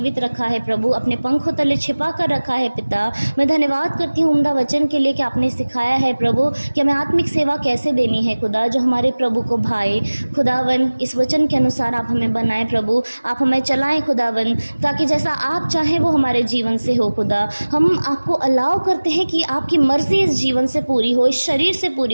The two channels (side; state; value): both; inverted; correlation -1.00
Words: रखा है प्रभु, अपने पंखों तले छिपा कर रखा है पिता। मैं धन्यवाद करती हूँ उम्दा वचन के लिए कि आपने सिखाया है प्रभु कि हमें आत्मिक सेवा कैसे देनी है खुदा, जो हमारे प्रभु को भाए खुदावन। इस वचन के अनुसार आप हमें बनाएं प्रभु, आप हमें चलाएं खुदावन, ताकि जैसा आप चाहें वो हमारे जीवन से हो खुदा। हम आपको अलाउ करते हैं कि आपकी मर्जी इस जीवन से पूरी हो, इस शरीर से पूरी